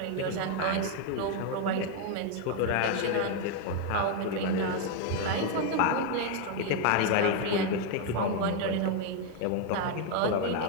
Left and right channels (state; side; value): different; both; correlation 0.01